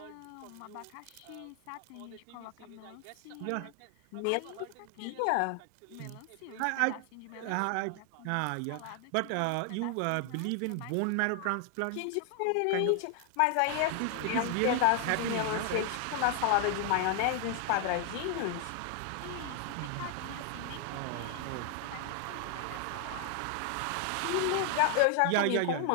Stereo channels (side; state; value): both; different; correlation 0.00